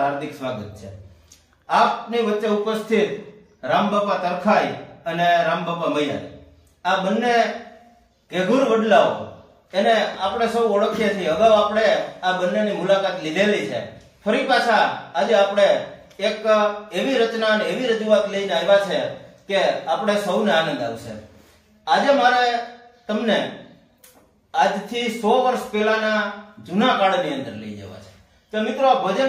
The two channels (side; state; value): both; identical; correlation 1.00